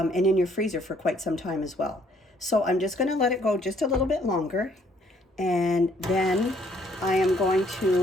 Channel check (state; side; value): normal; both; correlation 0.65